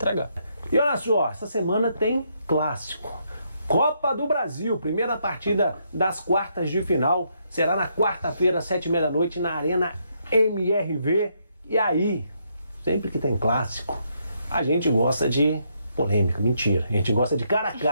E olha só, essa semana tem clássico. Copa do Brasil, primeira partida das quartas de final. Será na quarta-feira, 7h30 na Arena MRV. E aí, sempre que tem clássico, a gente gosta de polêmica. Mentira, a gente gosta de cara a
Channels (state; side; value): inverted; both; correlation -0.75